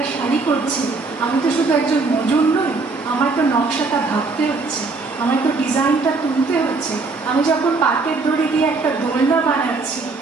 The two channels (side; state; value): left; quieter; 3.9 dB